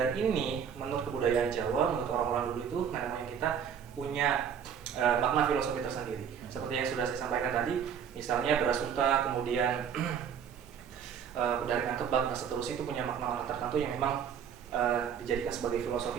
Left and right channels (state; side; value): quieter; left; 7.8 dB